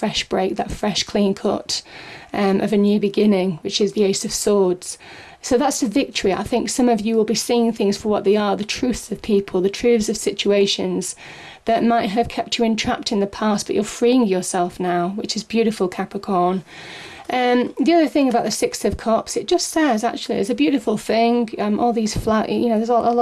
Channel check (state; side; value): identical; both; correlation 1.00